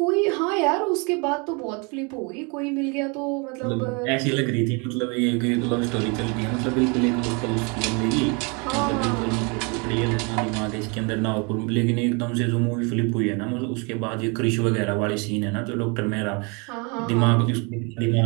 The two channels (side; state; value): left; quieter; 31.8 dB